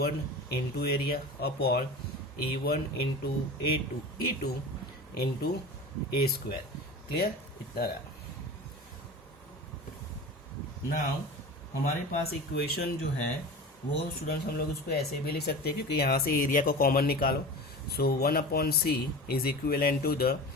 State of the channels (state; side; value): normal; both; correlation 0.33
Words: into area upon E1 into E2 into A square. Clear? इतना रहा. Now हमारे पास equation जो है वो students हम लोग उसको ऐसे भी लिख सकते हैं क्योंकि यहाँ से एरिया को कॉमन निकालो. So 1/C is equivalent to the